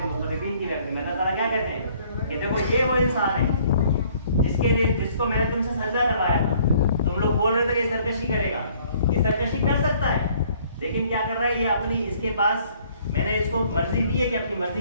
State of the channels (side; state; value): both; inverted; correlation -0.60